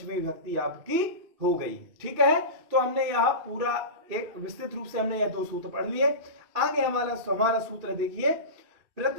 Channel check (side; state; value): left; late; 2.6 ms